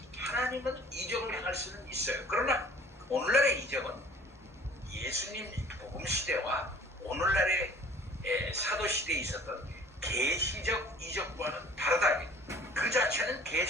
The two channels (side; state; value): both; normal; correlation 0.51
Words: 하나님은 이적을 행할 수는 있어요. 그러나 오늘날의 이적은 예수님 복음 시대와 오늘날의 사도시대에 있었던 계시적 이적과는 다르다. 그 자체는